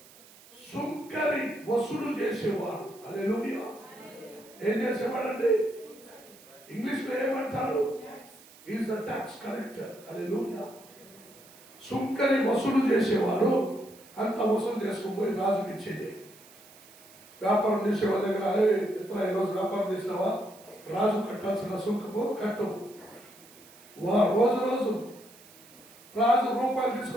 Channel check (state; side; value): noise; right; hiss, 23 dB below the sound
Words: సుంకరి వసూలు చేసేవాడు. హల్లెలూయా. ఏం చేసేవాడండి? ఇంగ్లీష్ లో ఏమంటారు? Is the tax collector. హల్లెలూయా. సుంకరి వసూలు చేసేవాడు. అంత వసూలు చేసుకుపోయి రాజుకి ఇచ్చేది. వ్యాపారం చేసేవాళ్ళ దగ్గర, ఇతర ఈరోజు వ్యాపారం చేసినావా, రాజు కట్టాల్సిన సుంకము కట్టు. రోజు రాజు రూపాయలు